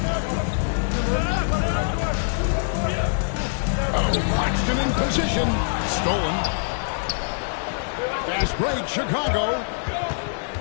Oh, Claxton in position. Stolen. Fast break, Chicago.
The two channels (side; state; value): right; silent; digital silence